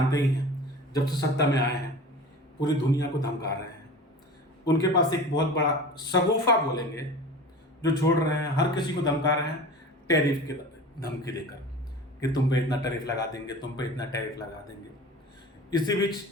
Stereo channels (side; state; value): both; normal; correlation 0.37